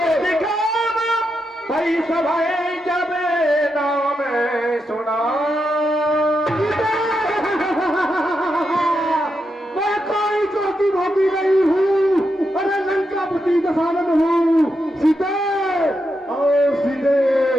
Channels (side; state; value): both; normal; correlation 0.84